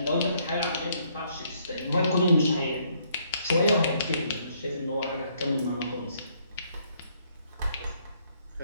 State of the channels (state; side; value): inverted; both; correlation -0.68